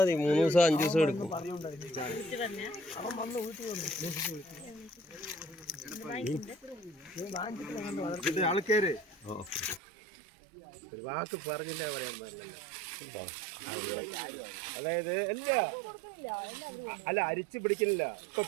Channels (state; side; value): drops out; left; at 9.8 s